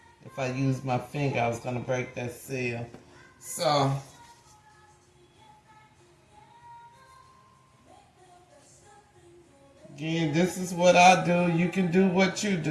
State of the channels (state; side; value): identical; both; correlation 1.00